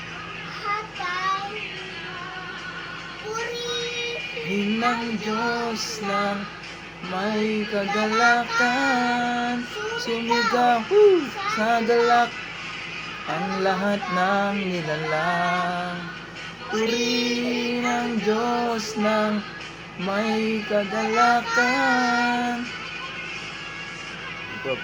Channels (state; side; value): identical; both; correlation 1.00